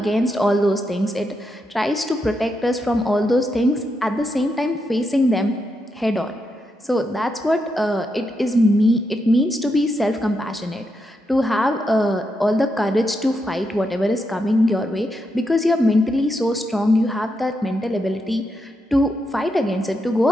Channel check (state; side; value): normal; both; correlation 0.83